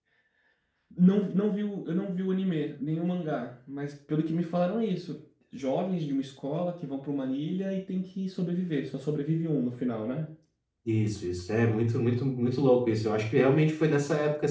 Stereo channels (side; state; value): both; identical; correlation 1.00